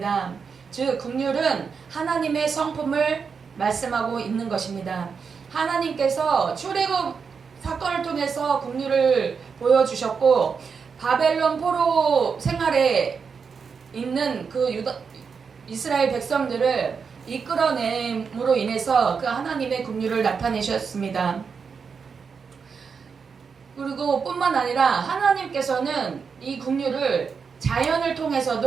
즉 긍휼은 하나님의 성품을 말씀하고 있는 것입니다. 하나님께서 출애굽 사건을 통해서 긍휼을 보여주셨고 바벨론 포로 생활에 있는 그 이스라엘 백성들을 이끌어냄으로 인해서 그 하나님의 긍휼을 나타내셨습니다. 그리고 뿐만 아니라 하나님께서는 이 긍휼을 자연을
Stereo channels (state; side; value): quieter; left; 5.8 dB